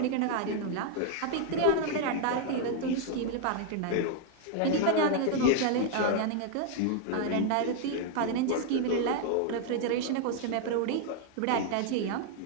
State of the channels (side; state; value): both; different; correlation 0.00